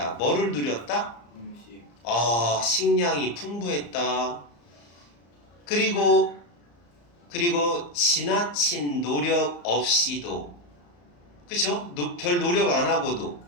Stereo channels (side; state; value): right; late; 34 ms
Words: 뭐를 누렸다? 음식. 식량이 풍부했다. 그리고 지나친 노력 없이도 그죠? 별 노력 안 하고도